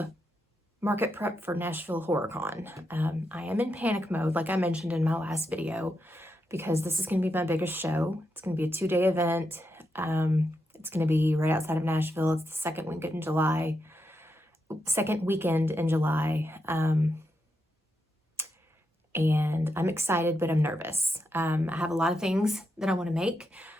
market prep for Nashville Horror Con. I am in panic mode, like I mentioned in my last video, because this is going to be my biggest show. It's going to be a 2-day event. It's going to be right outside of Nashville. It's the second weekend in July. And I'm excited, but I'm nervous. I have a lot of things that I want to make.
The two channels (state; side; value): normal; both; correlation 0.84